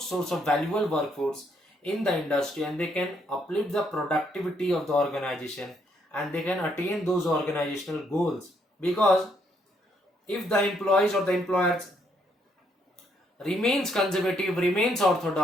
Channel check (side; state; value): both; normal; correlation 0.72